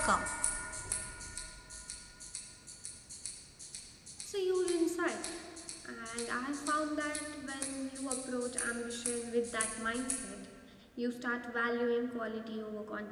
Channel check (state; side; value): identical; both; correlation 1.00